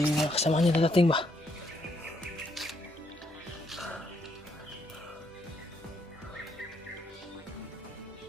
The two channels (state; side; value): normal; both; correlation 0.74